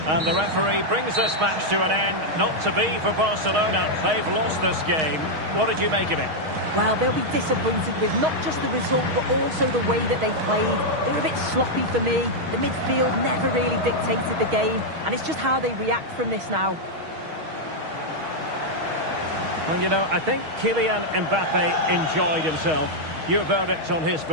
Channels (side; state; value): left; late; 6.4 ms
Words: And the referee brings this match to an end. Not to be for Barcelona. They've lost this game. What did you make of it? Well, they'll be disappointed with not just the result, but also the way that they played. They were a bit sloppy for me. The midfield never really dictated the game, and it's just how they react from this now. Well, you know, I think Kylian Mbappe enjoyed himself. Your verdict on his